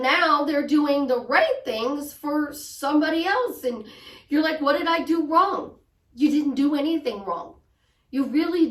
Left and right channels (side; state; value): both; identical; correlation 1.00